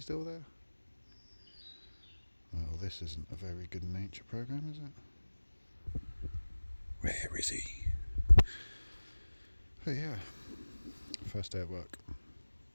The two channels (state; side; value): inverted; both; correlation -1.00